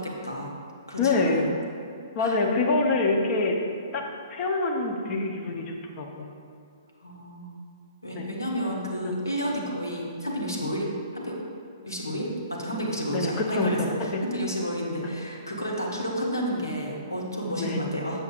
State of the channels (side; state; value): both; inverted; correlation -0.47